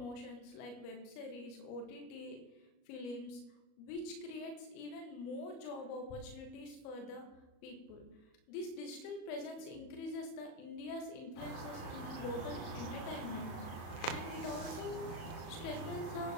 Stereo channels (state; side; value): late; right; 37 ms